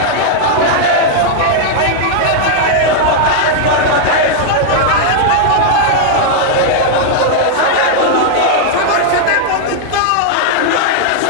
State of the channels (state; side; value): different; both; correlation -0.01